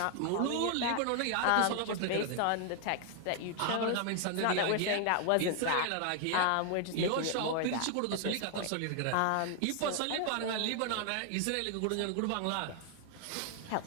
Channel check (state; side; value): different; both; correlation 0.00